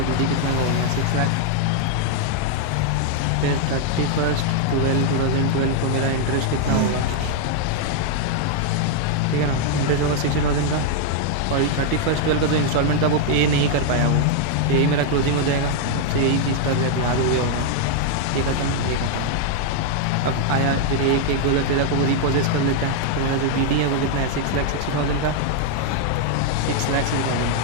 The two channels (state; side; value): different; both; correlation 0.00